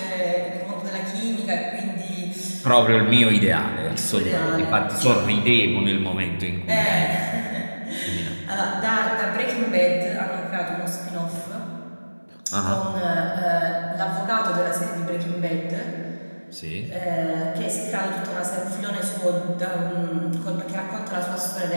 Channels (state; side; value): inverted; both; correlation -1.00